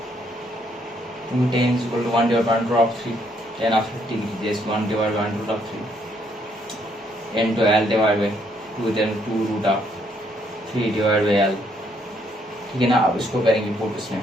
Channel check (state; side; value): normal; both; correlation 0.70